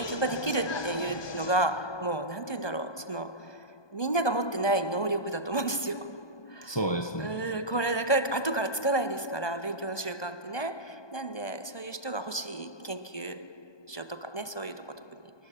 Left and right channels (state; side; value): late; right; 1.2 ms